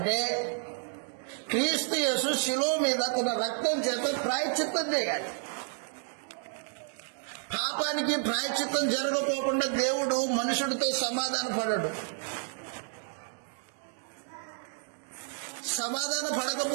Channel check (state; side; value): silent; left; 57 dB below the other